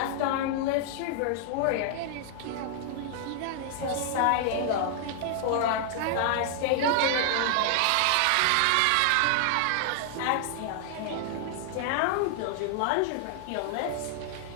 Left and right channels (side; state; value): both; different; correlation 0.00